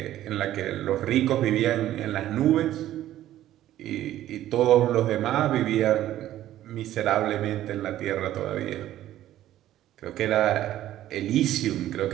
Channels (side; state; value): left; quieter; 13.2 dB